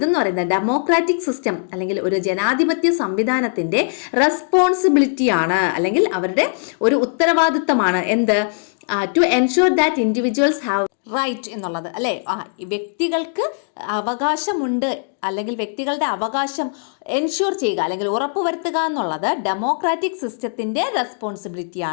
പറയുന്നത് ഡെമോക്രാറ്റിക് സിസ്റ്റം അല്ലെങ്കിൽ ഒരു ജനാധിപത്യ സംവിധാനത്തിന്റെ റെസ്പോൺസിബിലിറ്റിയാണ് അല്ലെങ്കിൽ അവരുടെ ഒരു ഉത്തരവാദിത്തമാണ്. എന്ത്? To ensure that individuals have right എന്നുള്ളത് അല്ലേ? വ്യക്തികൾക്ക് അവകാശമുണ്ട് അല്ലെങ്കിൽ വ്യക്തികളുടെ അവകാശം എൻഷുർ ചെയ്യുക അല്ലെങ്കിൽ ഉറപ്പുവരുത്തുക എന്നുള്ളത് ഡെമോക്രാറ്റിക് സിസ്റ്റത്തിന്റെ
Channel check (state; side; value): silent; right; digital silence